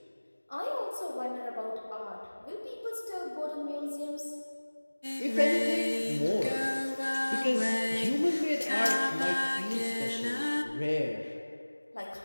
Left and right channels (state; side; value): inverted; both; correlation -1.00